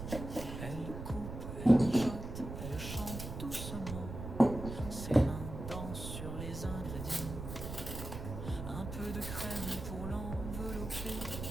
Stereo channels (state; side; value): noise; right; rumble, 7 dB below the sound